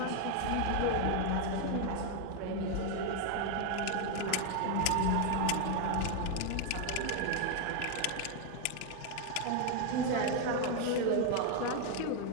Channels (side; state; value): both; different; correlation 0.01